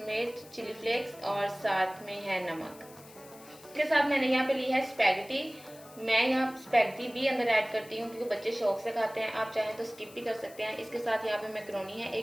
चिली फ्लेक्स और साथ में है नमक। इसके साथ मैंने यहाँ पे ली है स्पैगेटी। मैं यहाँ स्पैगेटी भी अंदर ऐड करती हूँ क्योंकि बच्चे शौक से खाते हैं, आप चाहें तो स्किप भी कर सकते हैं। इसके साथ यहाँ पे मैक्रोनी है,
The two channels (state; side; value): noise; left; hiss, 21 dB below the sound